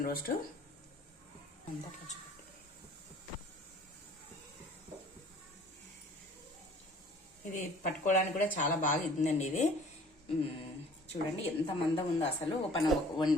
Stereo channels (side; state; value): both; normal; correlation 0.51